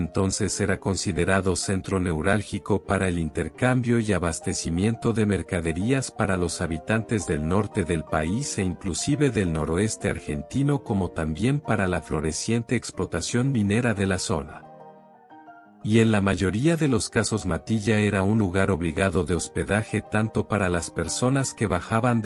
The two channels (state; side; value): identical; both; correlation 1.00